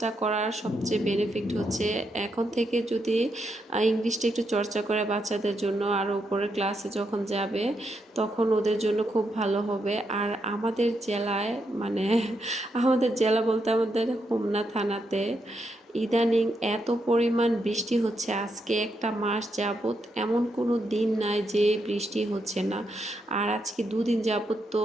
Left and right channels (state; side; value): normal; both; correlation 0.81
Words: করার সবচেয়ে বেনিফিট হচ্ছে এখন থেকে যদি ইংলিশটা একটু চর্চা করে বাচ্চাদের জন্য, আর উপরের ক্লাসে যখন যাবে তখন ওদের জন্য খুব ভালো হবে। আর আমাদের জেলায় মানে আমাদের জেলা বলতে আমাদের হোমনা থানাতে ইদানিং এত পরিমাণ বৃষ্টি হচ্ছে, আজকে একটা মাস যাবত এমন কোনো দিন নাই যে বৃষ্টি হচ্ছে না। আর আজকে 2 দিন যাবত তো